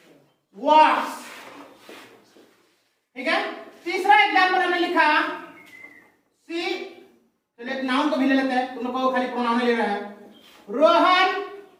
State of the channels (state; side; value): identical; both; correlation 1.00